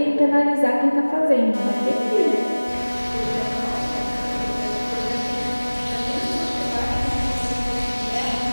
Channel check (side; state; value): both; inverted; correlation -1.00